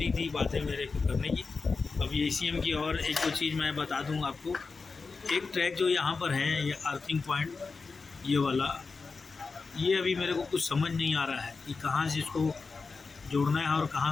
थी बातें मेरे को करने की। अब ये ईसीएम की और एक दो चीज़ मैं बता दूँ आपको। एक ट्रैक जो यहाँ पर है, ये अर्थिंग पॉइंट, ये वाला, ये अभी मेरे को कुछ समझ नहीं आ रहा है कि कहाँ से इसको जोड़ना है और कहाँ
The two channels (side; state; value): right; quieter; 4.4 dB